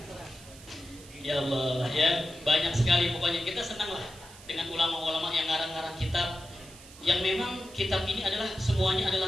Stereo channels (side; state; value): right; noise; hiss, 19 dB below the sound